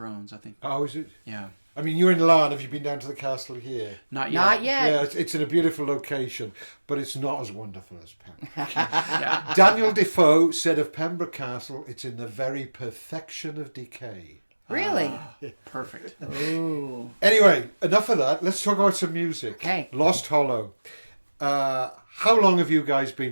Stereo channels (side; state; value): both; inverted; correlation -1.00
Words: I think. Oh, is it? Yeah, I mean, you're in Larne. Have you been down to the castle here? not yet. Not yet. Yeah, it's in a beautiful location, but it's not as wonderful as Pembroke. Yeah. Daniel Defoe said of Pembroke Castle, it's in the very perfection of decay. Really? Perfect. Ooh. Anyway, enough of that. Let's talk about some music. Okay. Lost Hollow. How long have you guys